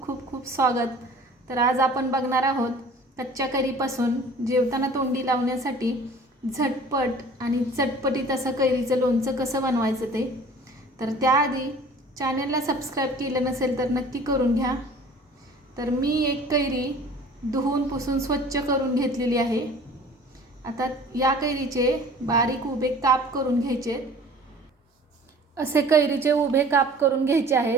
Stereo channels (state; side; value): normal; both; correlation 0.47